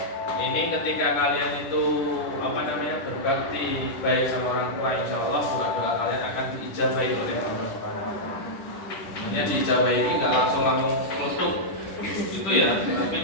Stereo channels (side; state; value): right; late; 10 ms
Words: ini ketika kalian itu berbakti baik sama orang tua, insya Allah doa kalian akan diijabahi oleh Allah Subhanahu Wa Taala. Ini diijabahi ini nggak langsung menutup itu ya, tapi